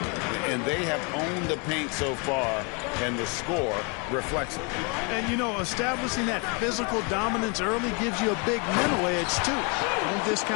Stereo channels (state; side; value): quieter; right; 32.4 dB